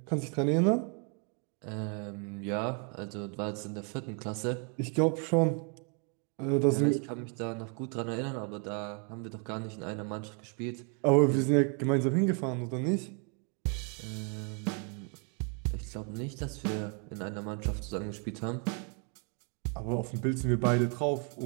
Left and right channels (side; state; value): left; quieter; 38.5 dB